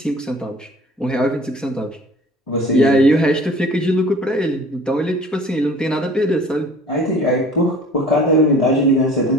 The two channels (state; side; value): normal; both; correlation 0.47